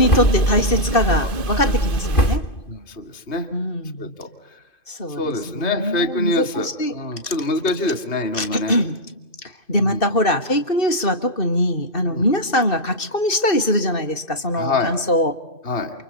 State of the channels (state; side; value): late; right; 2.5 ms